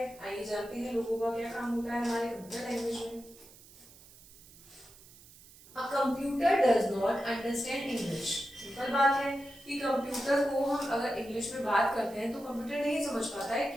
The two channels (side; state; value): right; noise; hiss, 22 dB below the sound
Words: आइए जानते हैं लोगो का क्या काम होता है हमारे कंप्यूटर लैंग्वेज में। A computer does not understand English। Simple बात है कि कंप्यूटर को हम अगर इंग्लिश में बात करते हैं तो कंप्यूटर नहीं समझ पाता है,